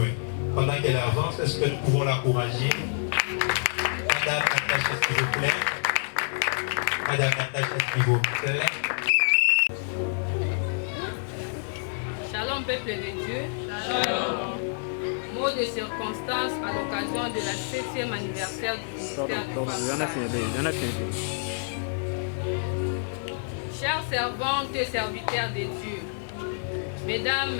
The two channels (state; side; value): silent; right; digital silence